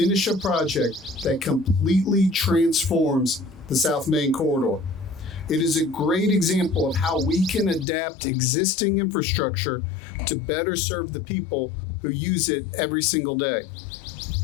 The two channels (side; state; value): right; drops out; at 7.9 s